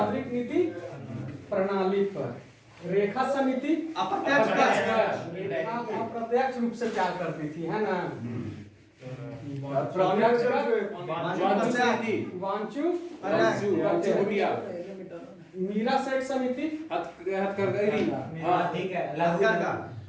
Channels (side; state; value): both; identical; correlation 1.00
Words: नीति प्रणाली पर। रेखा समिति अप्रत्यक्ष रूप से प्यार करती थी, है ना। वांचू मीरा सेठ समिति